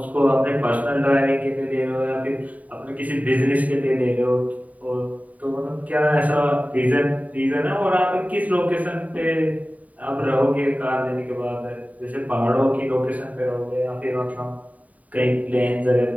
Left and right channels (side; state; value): left; late; 0.071 ms